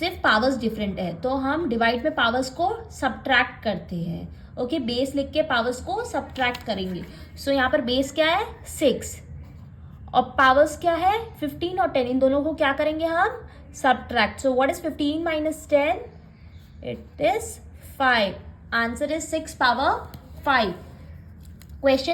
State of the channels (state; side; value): identical; both; correlation 1.00